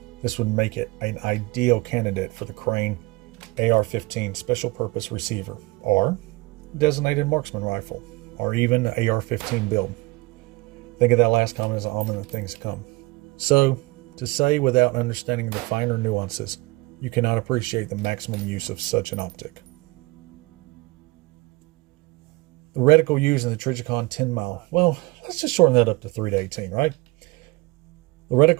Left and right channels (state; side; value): quieter; left; 23.2 dB